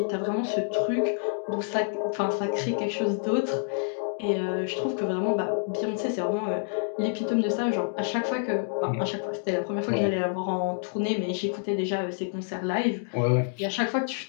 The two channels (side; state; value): right; silent; digital silence